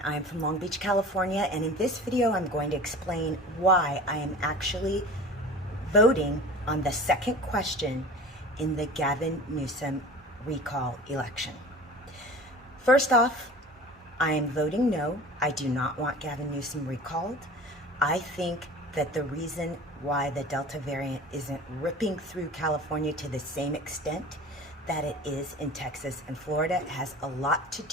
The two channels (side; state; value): both; normal; correlation 0.39